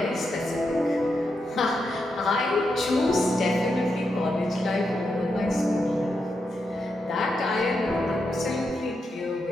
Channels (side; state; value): both; normal; correlation 0.84